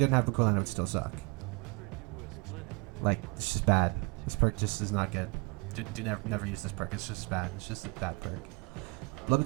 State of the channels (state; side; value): quieter; left; 29.1 dB